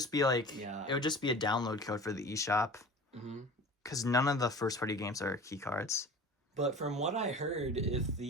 be like, Yeah. it would just be a download code for the eShop. Because none of the first-party games are key cards. But from what I heard, if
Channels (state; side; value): normal; both; correlation 0.39